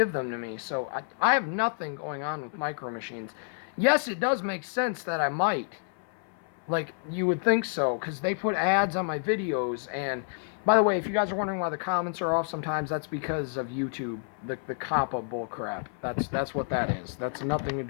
them to me. So I have nothing going on with Micro Machines. Yes, it does make sense that I might. Like, you would think so, because they put ads on my videos, and By the way, if you guys are wondering why the comments are off sometimes, that's because of YouTube, the COPPA bullcrap. That's what that is. That's nothing to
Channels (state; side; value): silent; right; 58 dB below the other